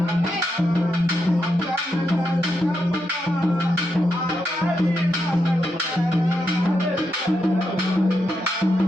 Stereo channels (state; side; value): normal; both; correlation 0.83